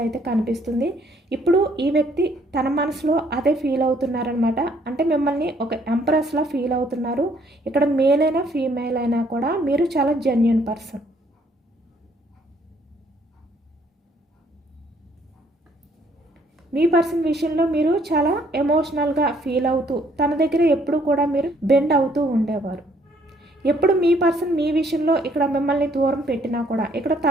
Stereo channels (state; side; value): normal; both; correlation 0.65